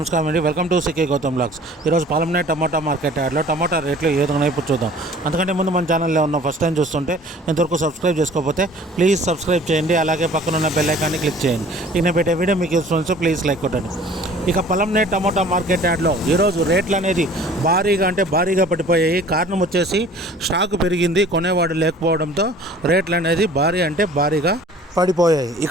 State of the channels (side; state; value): both; normal; correlation 0.49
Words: అండి. Welcome to CK Gautam blogs. ఈరోజు పాలెంనే టమాటా మార్కెట్ యార్డ్లో టమాటా రేట్లు ఏ విధంగా ఇప్పుడు చూద్దాం. అంతకంటే ముందు మన ఛానల్లో ఉన్న ఫస్ట్ టైం చూస్తుంటే ఇంతవరకు సబ్స్క్రైబ్ చేసుకోకపోతే ప్లీజ్ సబ్స్క్రైబ్ చేయండి. అలాగే పక్కన ఉన్న బెల్ ఐకాన్ని క్లిక్ చేయండి. నేను పెట్టే వీడియో మీకు యూస్ఫుల్ ప్లీజ్ లైక్ కొట్టండి. ఇక పాలెంనే టమాటా మార్కెట్ యార్డ్లో ఈరోజు రేట్లు అనేది భారీగా పడిపోయాయి. కారణం వచ్చేసి స్టాక్ పెరిగింది, కొనేవాడు లేకపోవడంతో రేట్లు అనేది భారీగా పడిపోయాయి.